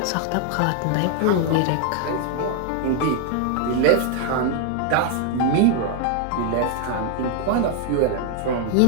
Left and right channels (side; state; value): both; different; correlation 0.00